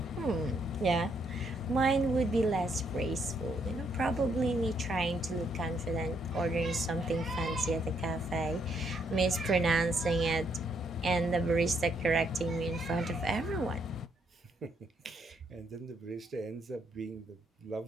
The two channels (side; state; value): both; normal; correlation 0.73